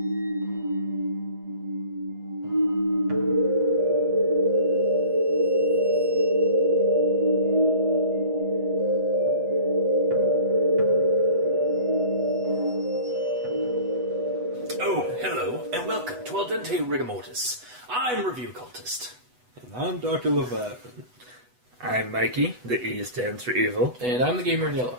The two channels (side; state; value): left; late; 8.1 ms